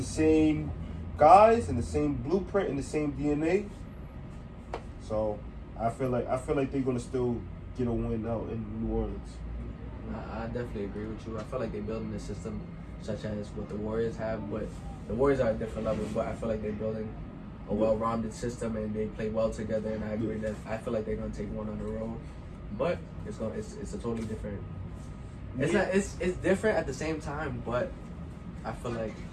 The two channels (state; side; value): identical; both; correlation 1.00